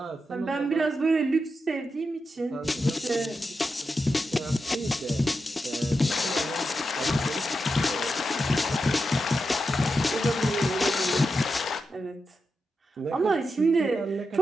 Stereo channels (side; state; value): both; normal; correlation 0.88